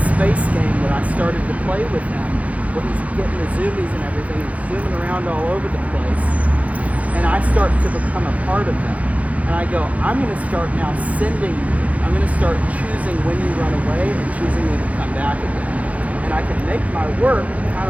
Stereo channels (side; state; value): left; late; 0.068 ms